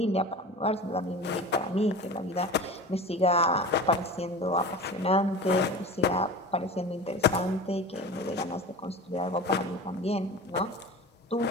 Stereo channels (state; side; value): normal; both; correlation 0.34